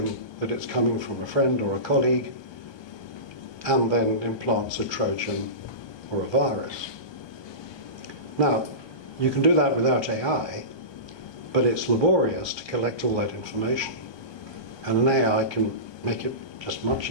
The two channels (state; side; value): late; right; 1.2 ms